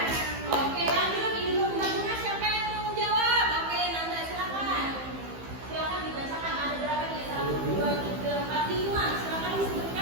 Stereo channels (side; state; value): left; late; 15 ms